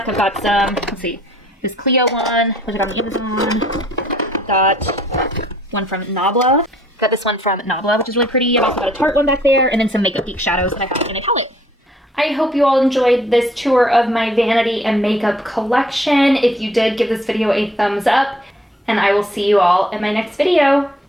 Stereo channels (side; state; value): both; normal; correlation 0.61